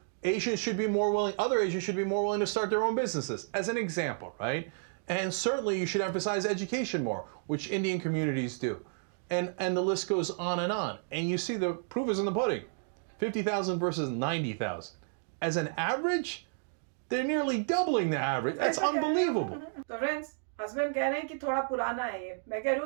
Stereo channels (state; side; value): silent; left; digital silence